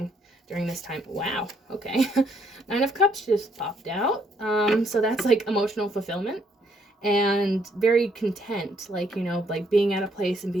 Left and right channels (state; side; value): normal; both; correlation 0.70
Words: during this time. Wow. Okay. 9 of Cups just popped out. So that's like emotional fulfillment. And very content, like, you know, like being at a place and